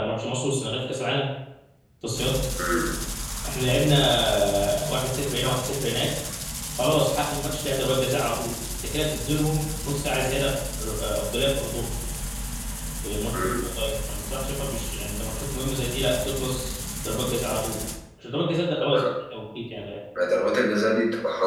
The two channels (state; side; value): identical; both; correlation 1.00